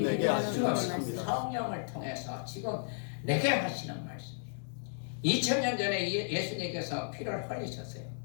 내게 하시는 말씀입니다. 성령을 통해서 지금 내게 하시는 말씀이에요. 2000년 전에 예수님께서 피를 흘리셨어요.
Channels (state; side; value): silent; right; digital silence